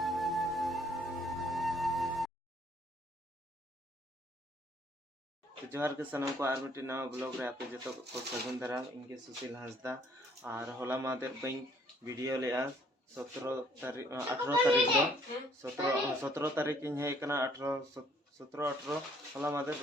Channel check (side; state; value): both; normal; correlation 0.62